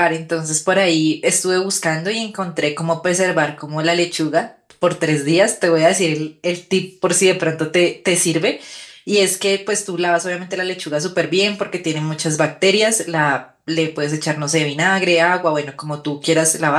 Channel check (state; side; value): identical; both; correlation 1.00